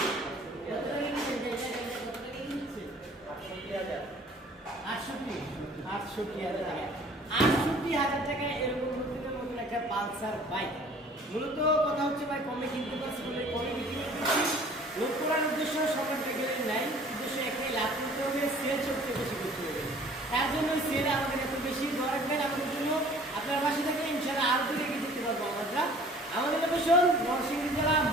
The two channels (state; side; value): normal; both; correlation 0.51